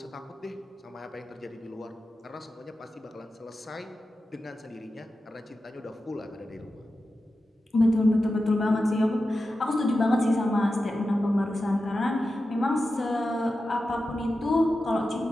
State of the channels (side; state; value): both; normal; correlation 0.92